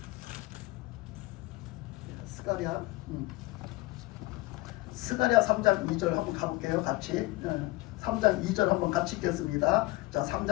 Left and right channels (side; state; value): right; quieter; 20.5 dB